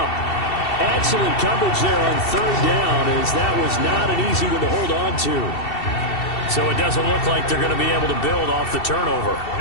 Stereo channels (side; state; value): right; late; 2.7 ms